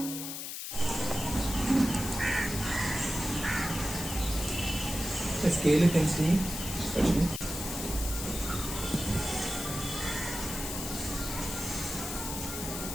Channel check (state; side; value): noise; left; hiss, 6 dB below the sound